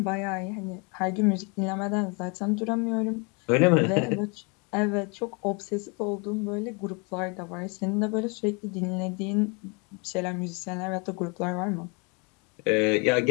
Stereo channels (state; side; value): quieter; right; 32.5 dB